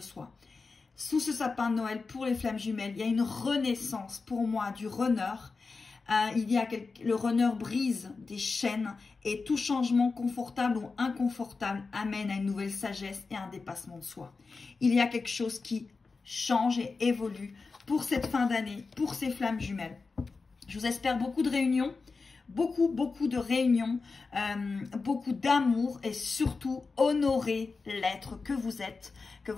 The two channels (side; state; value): right; quieter; 4.3 dB